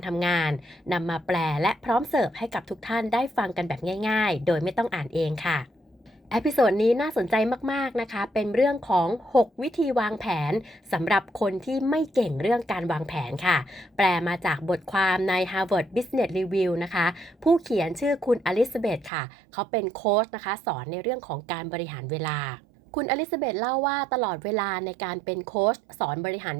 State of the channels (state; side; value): drops out; left; at 19.1 s